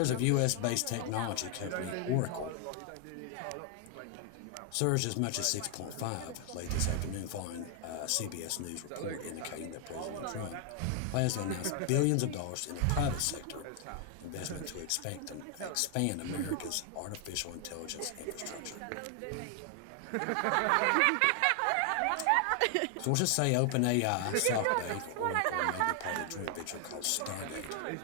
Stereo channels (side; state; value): both; different; correlation 0.00